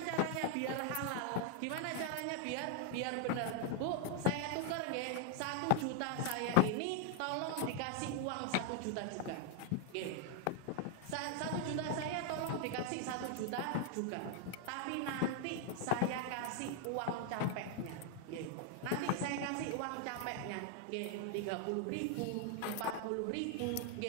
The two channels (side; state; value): both; different; correlation 0.00